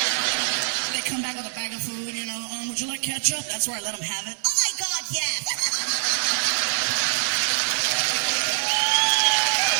They come back with a bag of food, you know. Would you like ketchup? That's where I let them have it. Oh my God, yes.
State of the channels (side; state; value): left; silent; digital silence